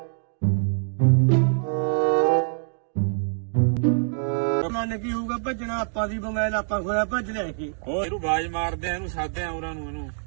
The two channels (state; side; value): silent; left; digital silence